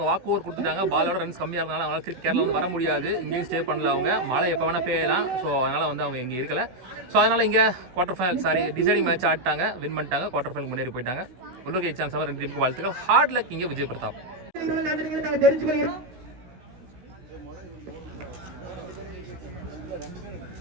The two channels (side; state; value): left; late; 16 ms